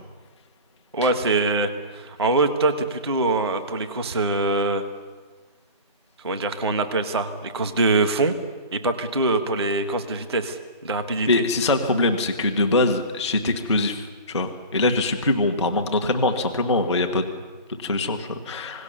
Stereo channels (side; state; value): both; inverted; correlation -0.31